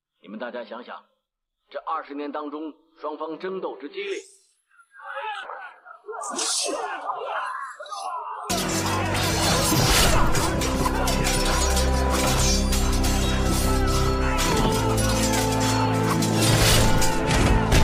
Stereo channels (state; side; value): identical; both; correlation 1.00